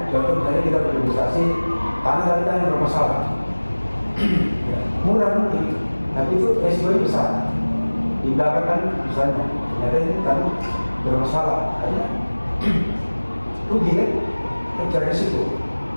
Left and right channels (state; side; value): inverted; both; correlation -1.00